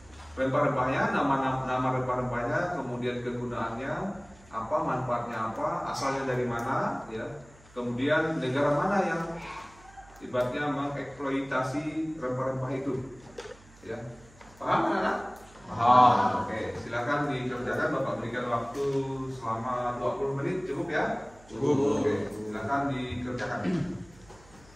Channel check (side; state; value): right; noise; hum, 25 dB below the sound